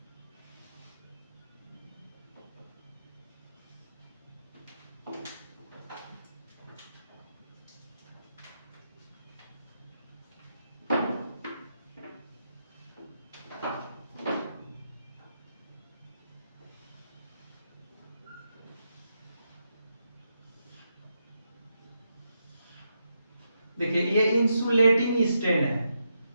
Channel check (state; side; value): inverted; both; correlation -0.83